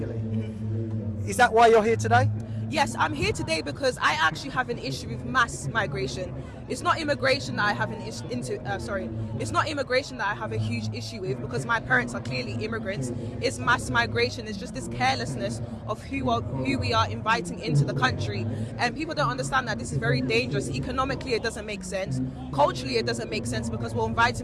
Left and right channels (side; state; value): both; identical; correlation 1.00